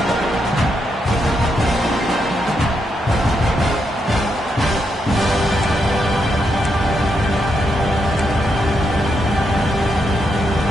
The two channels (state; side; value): normal; both; correlation 0.81